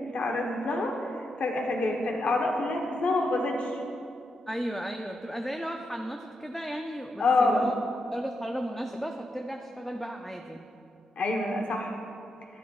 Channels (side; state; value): both; normal; correlation 0.84